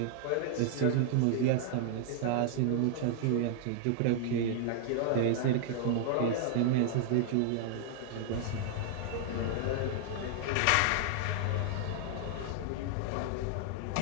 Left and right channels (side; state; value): both; different; correlation -0.01